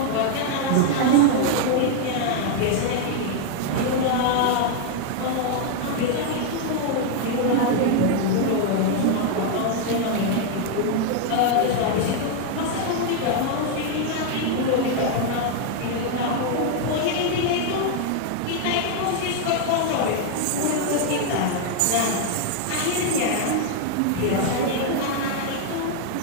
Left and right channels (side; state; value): both; different; correlation 0.00